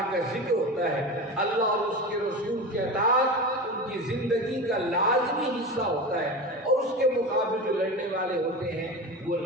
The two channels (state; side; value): normal; both; correlation 0.26